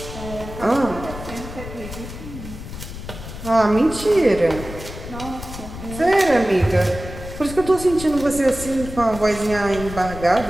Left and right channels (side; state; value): left; noise; rumble, 11 dB below the sound